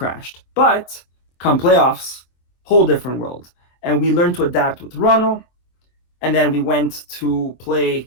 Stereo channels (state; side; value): late; right; 24 ms